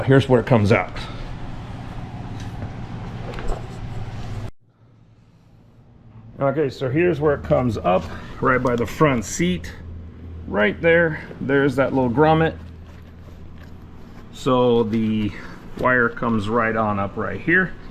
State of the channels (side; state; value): both; identical; correlation 1.00